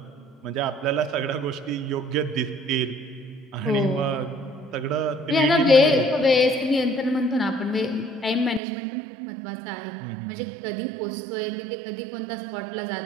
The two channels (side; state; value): left; drops out; at 8.6 s